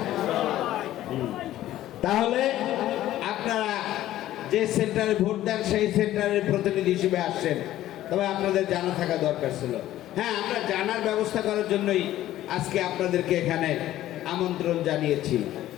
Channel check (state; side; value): quieter; right; 13.9 dB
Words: তাহলে আপনারা যে সেন্টারে ভোট দেন সেই সেন্টারের প্রতিনিধি হিসেবে আসছেন, তবে আপনাদের জানা থাকা দরকার ছিল। হ্যাঁ, আমরা জানার ব্যবস্থা করার জন্যই আজকে আপনাদেরকে এখানে আমন্ত্রণ জানিয়েছি।